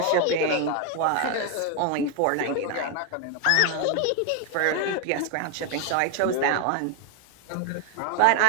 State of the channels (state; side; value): different; both; correlation 0.01